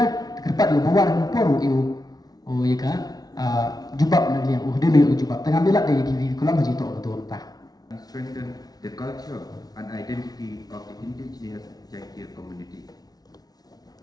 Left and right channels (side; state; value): right; late; 0.19 ms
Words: kerpat yo bawar ko poru eu oh ya ka jubab na liang dia yo jubab tengah belak dia kiwi kulang haji tok betul tah and strengthen the culture and identity of the indigenous Jaitia community.